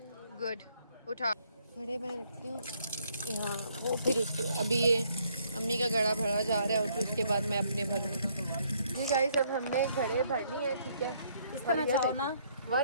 गुड, उठा घड़े में रखती हूँ यहाँ वो, फिर उसके अभी ये अम्मी का घड़ा भरा जा रहा है और फिर उसके बाद मैं अपने भरूँगी। जी गाइस, अब हमने घड़े भर लिए हैं, ठीक है। इस तरह चाहो ना,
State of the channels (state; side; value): inverted; both; correlation -0.68